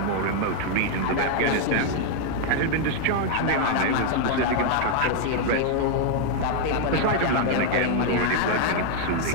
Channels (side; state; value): both; different; correlation 0.00